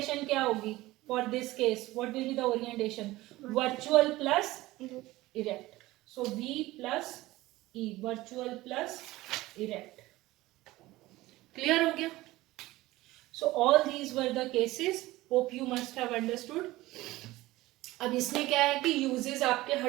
क्या होगी? For this case what will be the orientation? Virtual plus erect. So V plus E, virtual plus erect. Clear हो गया? So all these were the cases. Hope you must have understood. अब इसमें क्या है कि uses आपके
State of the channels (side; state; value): left; quieter; 18.3 dB